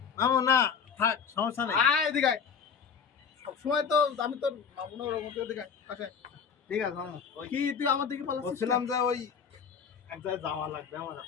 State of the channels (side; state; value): right; quieter; 6.6 dB